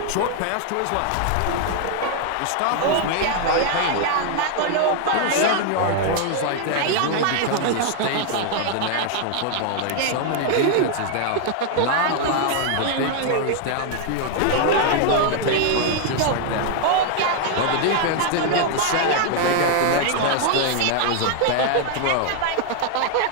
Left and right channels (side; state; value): both; different; correlation 0.00